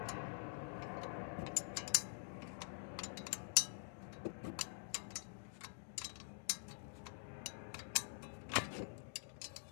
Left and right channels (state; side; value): silent; right; digital silence